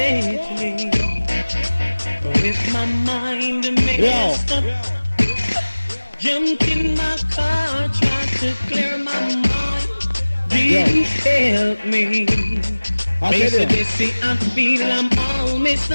With my mind messed up. Jumped in my car, tried to clear my mind. Didn't help me. Basically, I feel I'm all messed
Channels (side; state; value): both; inverted; correlation -1.00